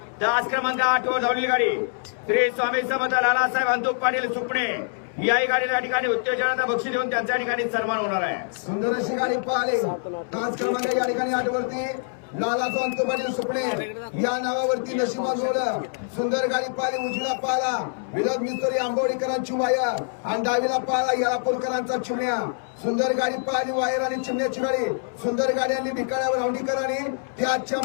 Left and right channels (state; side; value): silent; right; 62 dB below the other